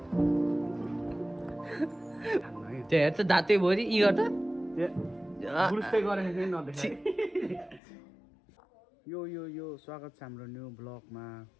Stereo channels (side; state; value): right; drops out; at 7.8 s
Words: त्यो हेर त दाँतै भरि यी गर्दा यो स्वागत छ हाम्रो न्यू ब्लगमा।